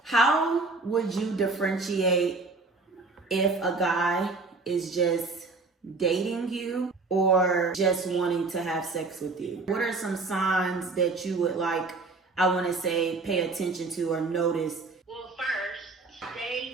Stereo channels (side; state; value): left; quieter; 3.7 dB